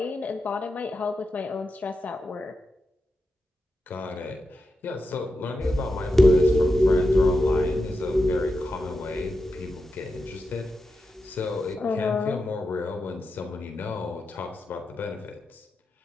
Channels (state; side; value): normal; both; correlation 0.89